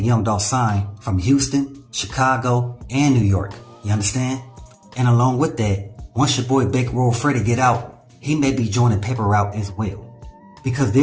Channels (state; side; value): identical; both; correlation 1.00